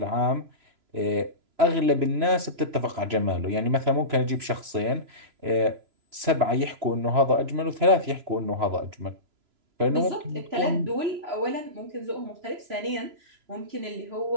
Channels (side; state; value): left; late; 3.0 ms